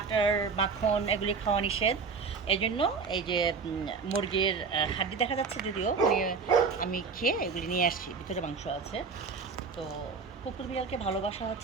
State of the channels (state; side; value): quieter; left; 5.1 dB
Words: মাখন এগুলি খাওয়া নিষেধ। এই জন্য এই যে মুরগির হাড্ডি দেখা যাচ্ছে যদিও, মানে আমি খেয়ে এগুলি নিয়ে আসছি, ভিতরে মাংস আছে। তো কুকুর বিড়ালকে ভালোবাসা